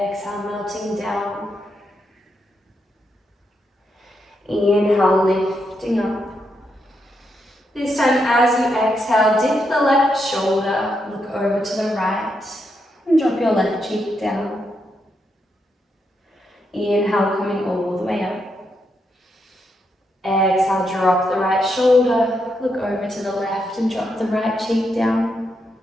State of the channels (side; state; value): both; normal; correlation 0.81